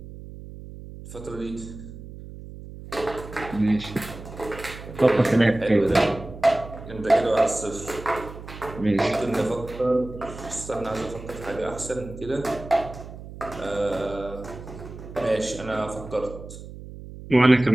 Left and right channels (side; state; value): right; noise; hum, 13 dB below the sound